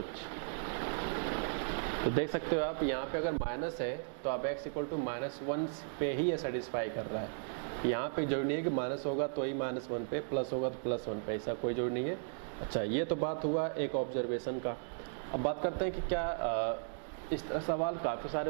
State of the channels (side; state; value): left; silent; digital silence